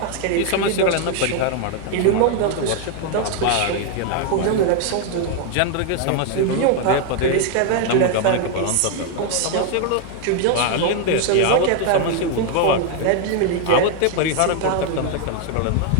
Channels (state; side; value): different; both; correlation 0.01